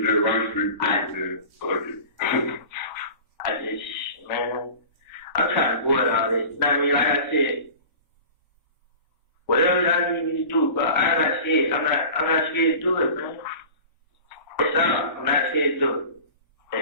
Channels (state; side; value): inverted; both; correlation -0.38